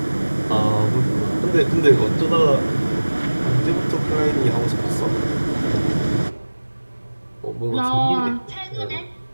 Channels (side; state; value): both; inverted; correlation -1.00